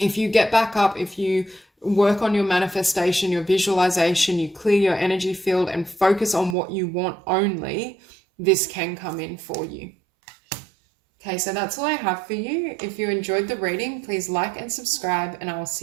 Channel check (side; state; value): left; drops out; at 6.6 s